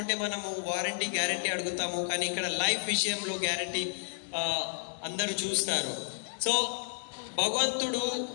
మనము వారంటీ గ్యారంటీ అడుగుతాము, కానీ ఇక్కడ లైఫ్ విషయంలో గ్యారంటీ అందరూ చూస్తారు. సో భగవంతుడు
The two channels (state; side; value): silent; right; 57 dB below the other